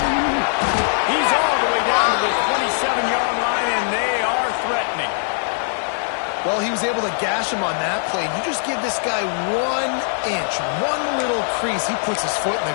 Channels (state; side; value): silent; right; 60 dB below the other